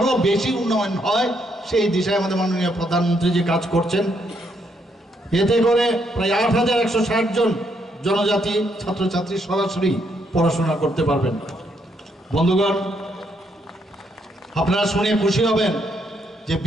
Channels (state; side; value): normal; both; correlation 0.74